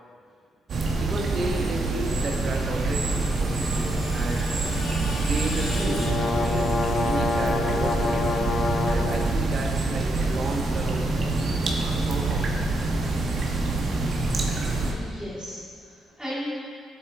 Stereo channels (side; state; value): both; normal; correlation 0.79